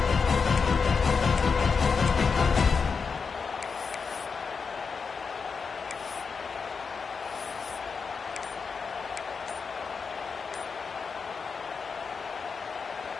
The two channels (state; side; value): quieter; right; 5.3 dB